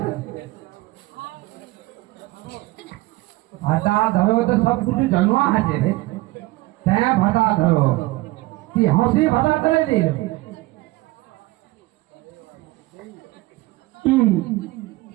ভাষা ধরো তো সব কিছু জানোয়া আছে রে। হ্যাঁ ভাষা ধরো কি হাসি ভাষা ধরে দিল।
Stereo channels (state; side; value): quieter; left; 19.8 dB